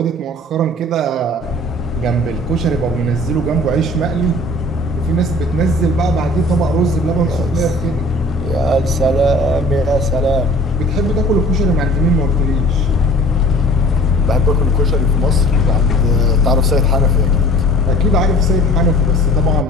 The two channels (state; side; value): normal; both; correlation 0.47